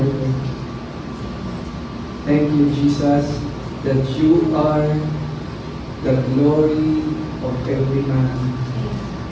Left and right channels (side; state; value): both; identical; correlation 1.00